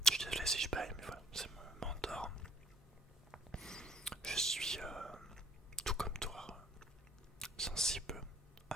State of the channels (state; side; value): normal; both; correlation 0.54